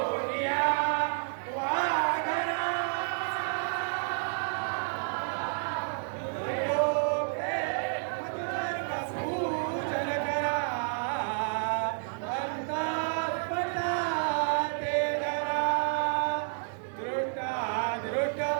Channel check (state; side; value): silent; left; digital silence